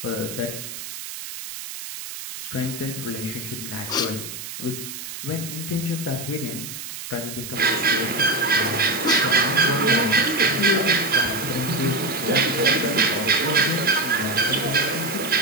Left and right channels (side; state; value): right; noise; hiss, 9 dB below the sound